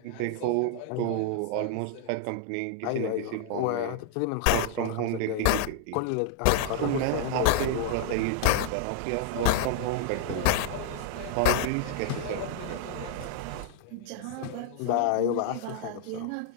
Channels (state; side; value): different; both; correlation -0.01